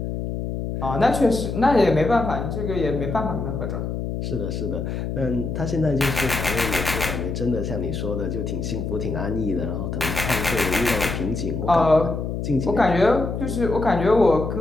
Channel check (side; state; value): left; noise; hum, 4 dB below the sound